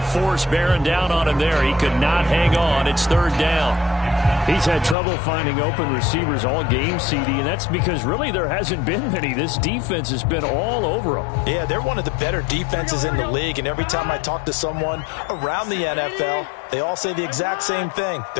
force bearing down on him there. He could not hang on. It's 3rd down. He's had trouble finding open receivers all game, CD, and that's because really there hasn't been many. This defense has been all over them. Yeah, they're one of the better defenses in the league, and every time I talk to someone around the NFL, they all say the exact same thing.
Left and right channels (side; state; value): right; drops out; at 5.0 s